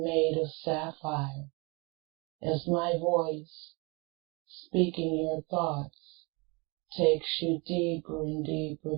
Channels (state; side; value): quieter; left; 28.8 dB